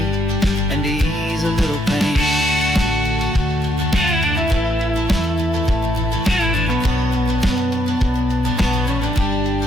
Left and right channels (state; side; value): normal; both; correlation 0.74